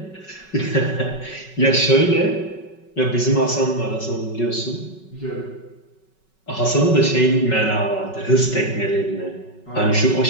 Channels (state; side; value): late; right; 5.3 ms